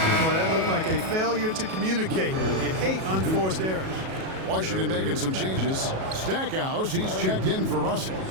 that looked like a failure to communicate. You hate unforced errors. Washington making some changes. Stackhouse, he's checked in for Russell.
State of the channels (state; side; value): late; left; 37 ms